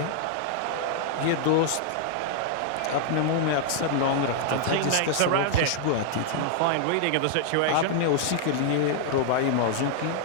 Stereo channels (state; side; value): different; both; correlation -0.01